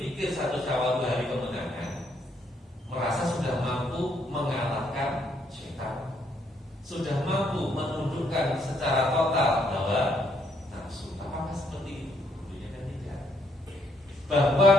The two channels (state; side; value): normal; both; correlation 0.71